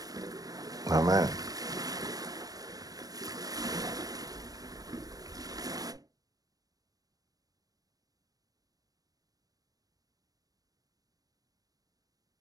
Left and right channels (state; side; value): late; left; 0.18 ms